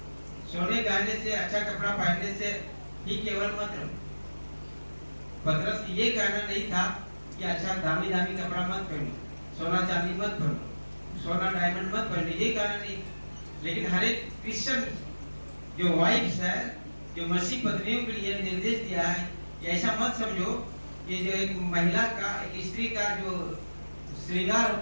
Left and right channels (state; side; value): inverted; both; correlation -1.00